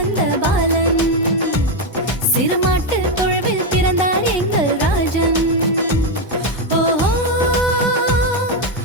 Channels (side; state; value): both; normal; correlation 0.05